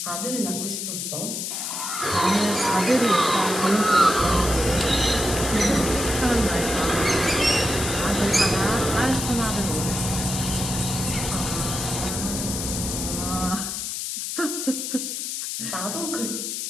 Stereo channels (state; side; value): noise; left; hiss, 4 dB below the sound